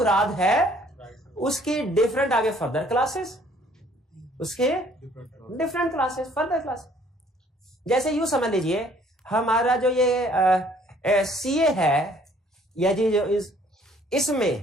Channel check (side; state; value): both; normal; correlation 0.59